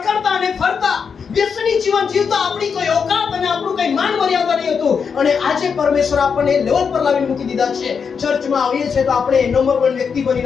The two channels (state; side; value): quieter; right; 6.2 dB